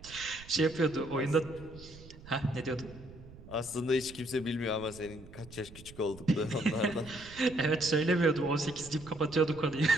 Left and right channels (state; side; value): noise; right; rumble, 18 dB below the sound